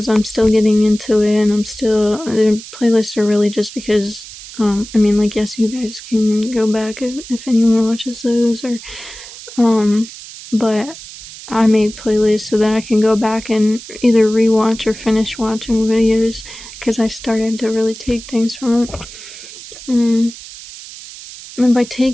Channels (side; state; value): right; noise; hiss, 15 dB below the sound